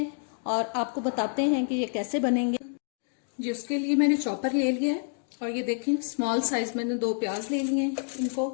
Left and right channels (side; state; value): right; silent; 59 dB below the other